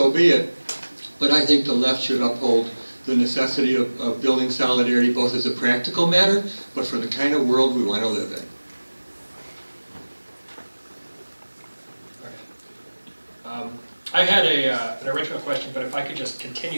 be it. But I think the left should uphold the necessity of building solidarity both as a practical matter, but for the kind of world we want to live in. I had an original question, but if I could just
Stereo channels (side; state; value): both; inverted; correlation -1.00